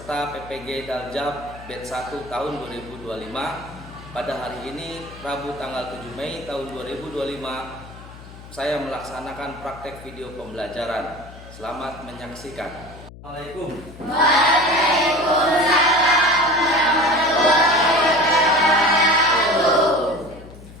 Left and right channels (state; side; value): noise; left; hum, 17 dB below the sound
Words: PPG Daljab Batch 1 tahun 2025. Pada hari ini, Rabu tanggal 7 Mei tahun 2025, saya melaksanakan praktek video pembelajaran. Selamat menyaksikan. Assalamualaikum. Waalaikumsalam warahmatullahi wabarakatuh.